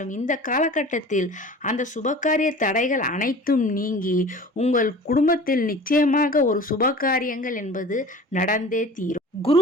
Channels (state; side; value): normal; both; correlation 0.41